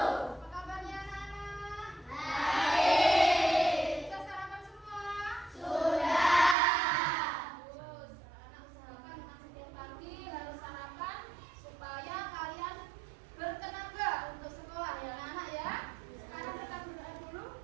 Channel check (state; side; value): drops out; left; at 6.6 s